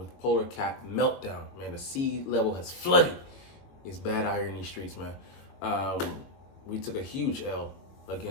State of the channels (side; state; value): right; late; 22 ms